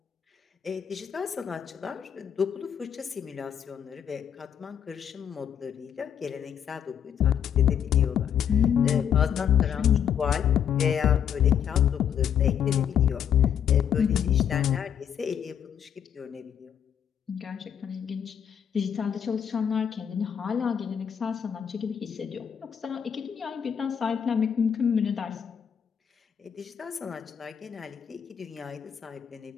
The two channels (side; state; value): right; quieter; 8.5 dB